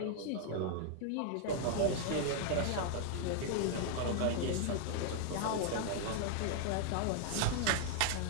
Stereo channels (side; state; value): both; different; correlation 0.00